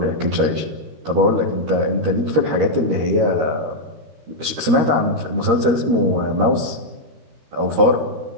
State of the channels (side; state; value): left; late; 13 ms